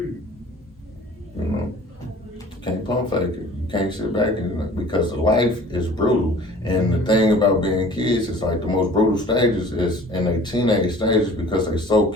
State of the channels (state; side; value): normal; both; correlation 0.47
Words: You know, you can't pump fake it. You can't sit back and, because life is brutal. And the thing about being kids, it's like the most brutal stages is in their teenage stages, because they're so